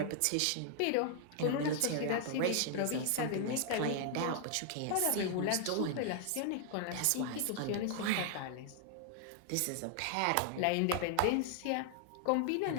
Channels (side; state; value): both; different; correlation 0.00